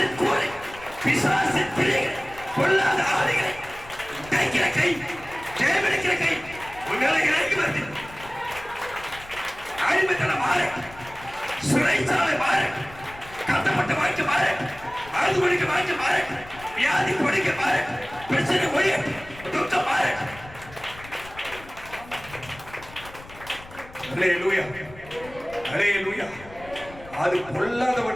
கூரை, பிசாசின் பிள்ளைகள், பொல்லாத ஆதிகளை தைக்கிற கை, ஜெயமெடுக்கிற கை உங்களை இறங்கி வருது. அடிமைத்தனம் மாறு, சிறைச்சாலை மாறு, கட்டப்பட்ட வாழ்க்கை மாறு, அழுது ஒழிக்க வாழ்க்கை மாறு, வியாதி ஒழிக்க மாறு, பிரச்சனை ஒழிய துக்கம் மாறு. அல்லேலூயா, அல்லேலூயா. அது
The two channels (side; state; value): left; noise; rumble, 19 dB below the sound